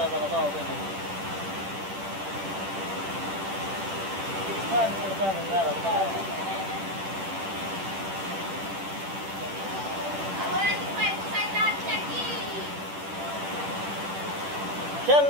बघा भाऊ बहिणी.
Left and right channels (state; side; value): late; left; 10 ms